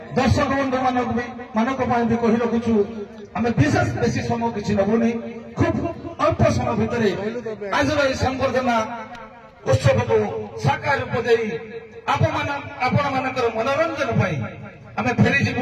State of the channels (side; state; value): both; identical; correlation 1.00